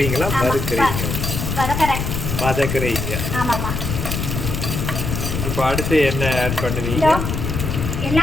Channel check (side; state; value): left; noise; rumble, 3 dB below the sound